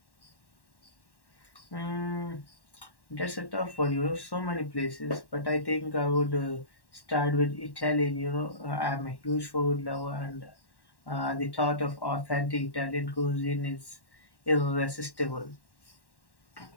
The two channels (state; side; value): late; right; 1.1 ms